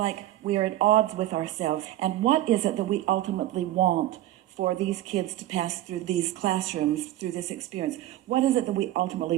we are at odds with ourselves. And what is it that we ultimately want for these kids to pass through these classrooms, through this experience? What is it that we ultimately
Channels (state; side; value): quieter; left; 14.3 dB